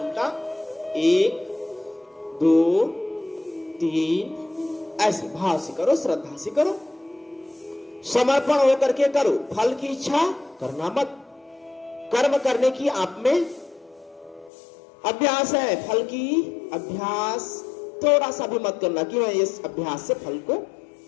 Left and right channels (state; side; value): drops out; right; at 14.5 s